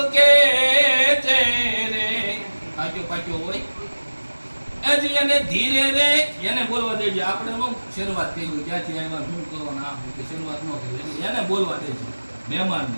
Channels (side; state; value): both; inverted; correlation -1.00